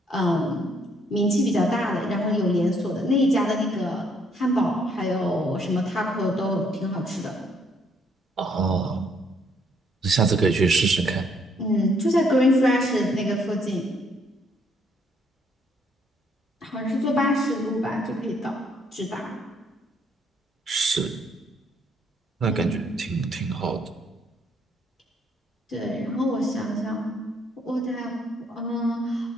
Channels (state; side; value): normal; both; correlation 0.68